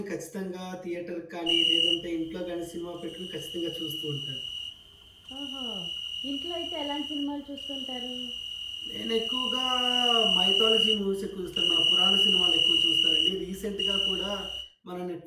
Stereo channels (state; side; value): identical; both; correlation 1.00